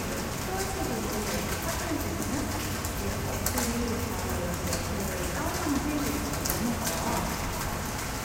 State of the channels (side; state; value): both; identical; correlation 1.00